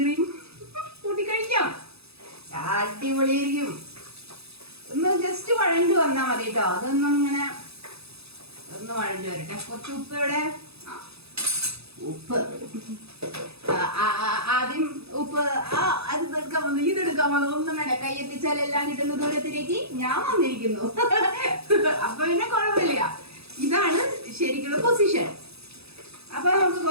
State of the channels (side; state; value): left; late; 0.78 ms